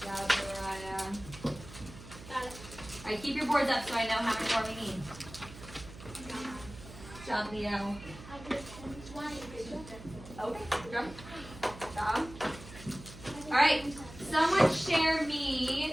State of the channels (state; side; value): noise; right; hum, 15 dB below the sound